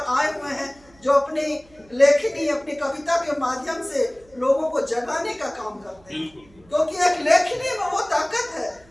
आए हुए हैं जो अपनी लेखनी, अपनी कविता के माध्यम से लोगों को जगाने का काम करते हैं। क्योंकि एक लेखनी में वो ताकत है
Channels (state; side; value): noise; right; hum, 29 dB below the sound